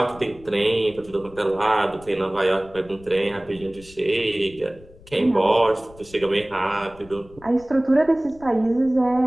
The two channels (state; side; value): noise; left; rumble, 22 dB below the sound